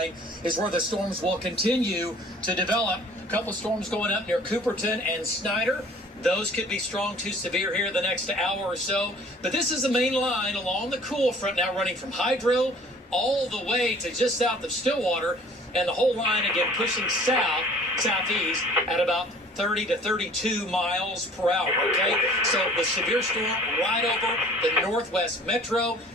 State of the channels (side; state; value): both; normal; correlation 0.51